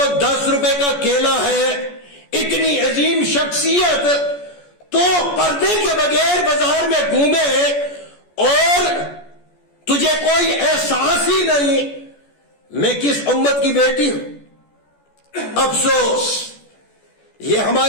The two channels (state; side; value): late; right; 14 ms